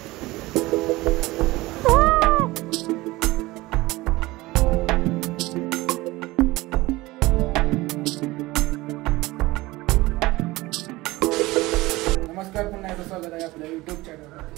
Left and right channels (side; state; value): left; quieter; 19.8 dB